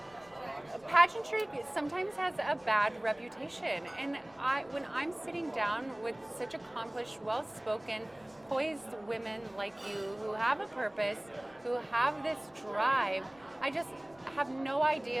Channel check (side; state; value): left; noise; rumble, 30 dB below the sound